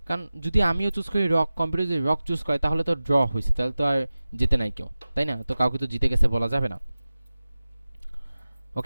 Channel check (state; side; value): inverted; both; correlation -0.96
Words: কারণ যদি আমিও চুজ করি রক, কম্পিউটার যদি রক চুজ করে তাহলে তো ড্র হয়েছে, তাহলে তো আর জিতে নাই কেউ, তাই না? তো কাউকে তো জিতে গেছে বলা যাবে না।